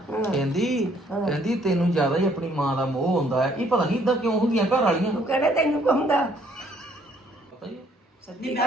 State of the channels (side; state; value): both; normal; correlation 0.64